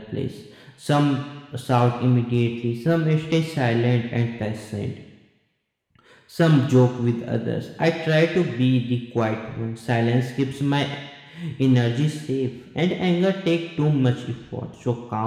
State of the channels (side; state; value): both; identical; correlation 1.00